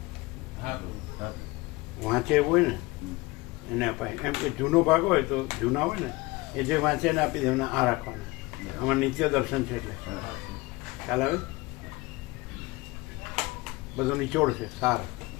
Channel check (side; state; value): right; quieter; 22.2 dB